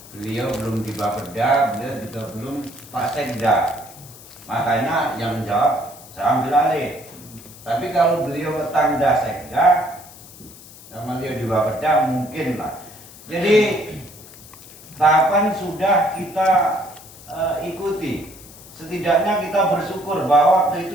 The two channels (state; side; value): noise; left; hiss, 19 dB below the sound